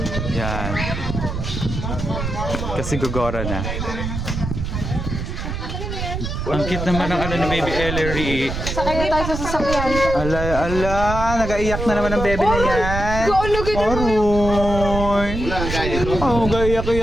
Yan. Kasi gugora na. Ang cute naman ng ano ni Baby Ellery. Sakay na tayo sa sasakyan. Ala, nag-aiyak na naman ang bebe na yan. Aroy. Oh,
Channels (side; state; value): right; noise; rumble, 4 dB below the sound